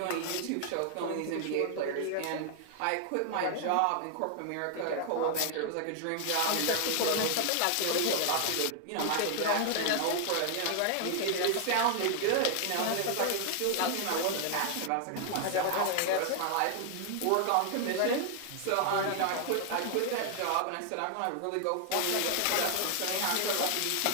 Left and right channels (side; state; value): both; different; correlation 0.00